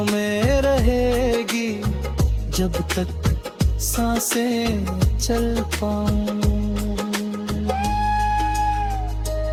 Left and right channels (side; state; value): both; identical; correlation 1.00